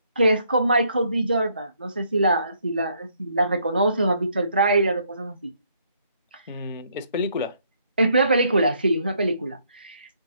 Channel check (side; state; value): both; inverted; correlation -0.70